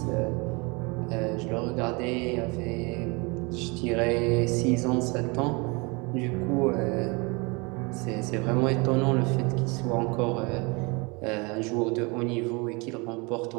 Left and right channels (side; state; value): left; quieter; 28.5 dB